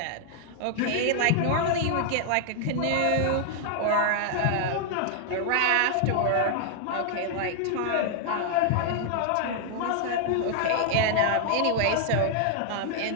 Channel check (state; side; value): different; both; correlation 0.00